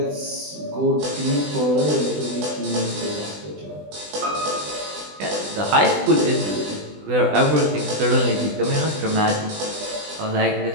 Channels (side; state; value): left; late; 20 ms